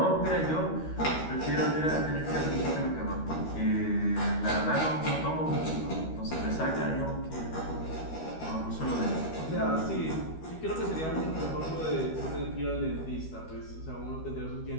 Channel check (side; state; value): right; late; 13 ms